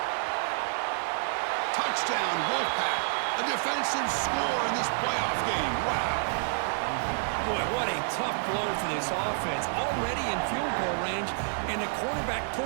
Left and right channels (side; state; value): left; silent; digital silence